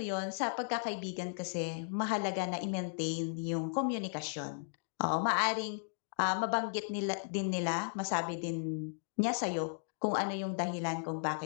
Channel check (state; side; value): silent; right; digital silence